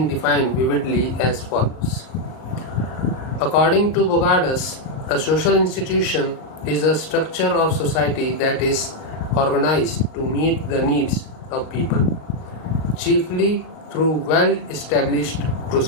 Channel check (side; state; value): right; late; 38 ms